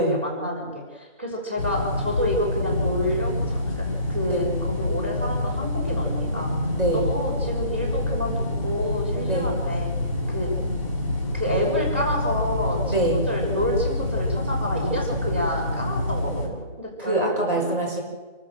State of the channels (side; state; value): both; inverted; correlation -0.47